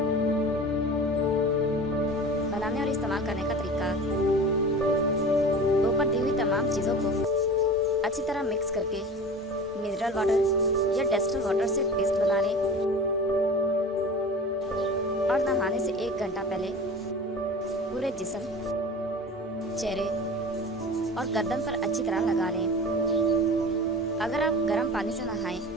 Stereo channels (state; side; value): normal; both; correlation 0.37